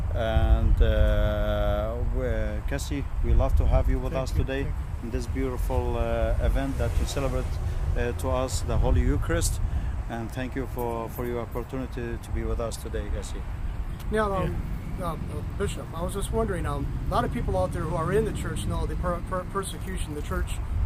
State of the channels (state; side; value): identical; both; correlation 1.00